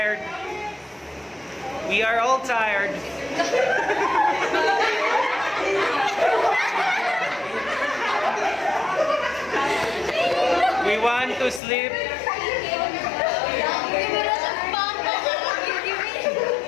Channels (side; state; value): right; drops out; at 11.6 s